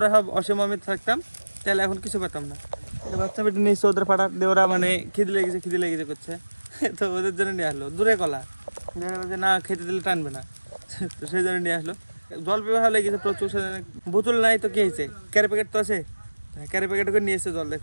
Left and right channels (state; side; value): inverted; both; correlation -1.00